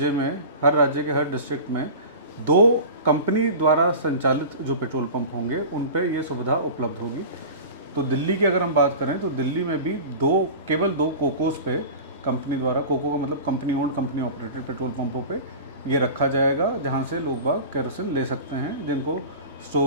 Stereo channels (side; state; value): both; inverted; correlation -0.34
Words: राज्य के हर डिस्ट्रिक्ट में 2 कंपनी द्वारा संचालित जो पेट्रोल पंप होंगे उन पे ये सुविधा उपलब्ध होगी। तो दिल्ली की अगर हम बात करें तो दिल्ली में भी केवल 2 कोकोस पे कंपनी द्वारा, कोको का मतलब company owned company operated petrol पंपों पे ये रखा जाएगा, जहां से लोग बाग केरोसिन ले सकते हैं जिनको